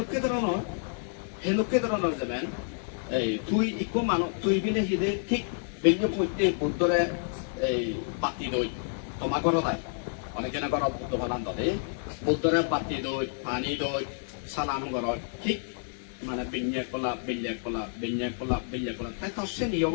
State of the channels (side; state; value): right; silent; digital silence